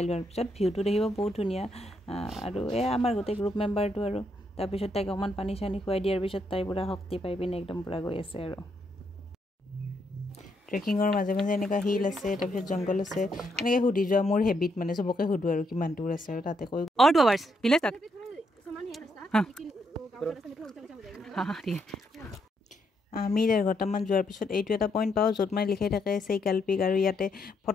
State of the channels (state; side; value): normal; both; correlation 0.77